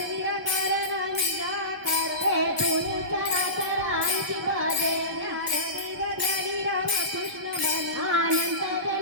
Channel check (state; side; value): late; left; 1.1 ms